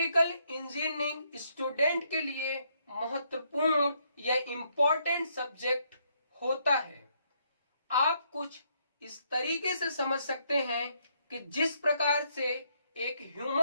engineering student के लिए महत्वपूर्ण या इम्पोर्टेंट सब्जेक्ट होता है। आप कुछ इस तरीके से समझ सकते हैं कि जिस प्रकार से एक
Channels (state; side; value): inverted; both; correlation -0.73